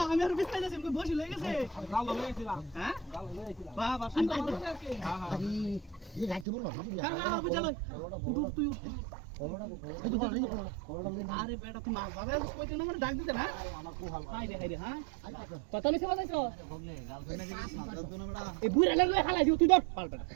আমি আর বিস্তার যাচ্ছি বসে লয়ে গেছে গাল লয়ে গেছিলাম হ্যাঁ গাল লয়ে গেছিলাম বাহ বাহ সুন্দর হ্যাঁ হ্যাঁ এই রাখতে বলবো কারণ বুঝালো উঠ তুই আরে বেটা তুই মাছ বাবা কইতে না মানে ডাক দিতে না আমার কো হাল হাই রে হ্যাঁ কত মিছে বাজাইছো বগলে গার্লফ্রেন্ড নাকি মাছ দাও না বেটা এই বুড়া লাগলে হালাই দিও তুই ধর পাল বেটা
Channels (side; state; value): left; drops out; at 6.5 s